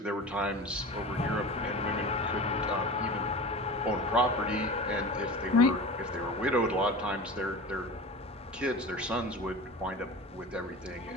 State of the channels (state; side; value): normal; both; correlation 0.33